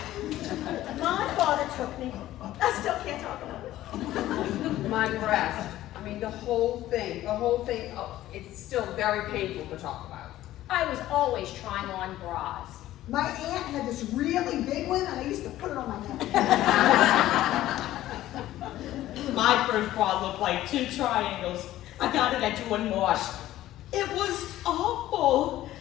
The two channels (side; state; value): right; quieter; 14.4 dB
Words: My father took me. I still can't talk about it. My breast. I mean, the whole thing, oh, it's still very painful to talk about. I was always trying on bras. My aunt had this really big one, and I used to put it on my neck. My first bra looked like 2 triangles. I got it at Jewel Wash. It was awful